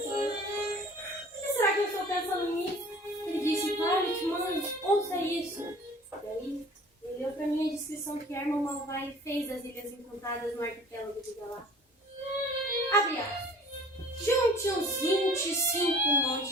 que será que eu estou pensando nisso? Ele disse, Violet, mãe, ouça isso. E aí, ele leu pra mim a descrição que Herman Malvai fez das Ilhas Encantadas no arquipélago de Galar. Abre aspas. Junte uns 25 montes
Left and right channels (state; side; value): normal; both; correlation 0.48